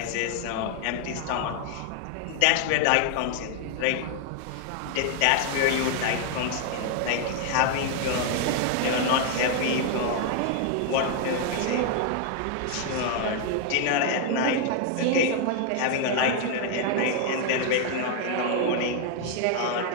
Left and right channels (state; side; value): different; both; correlation 0.00